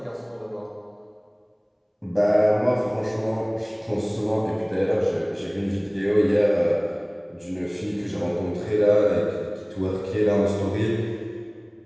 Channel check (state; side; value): identical; both; correlation 1.00